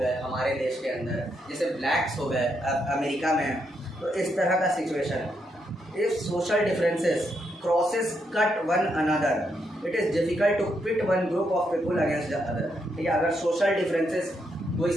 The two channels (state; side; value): normal; both; correlation 0.79